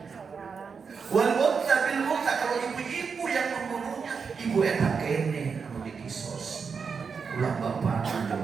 Wal unta bil unta, kalau ibu-ibu yang membunuhnya, ibu enak kene anu dikisos. Ulah bapak di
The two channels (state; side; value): quieter; left; 5.7 dB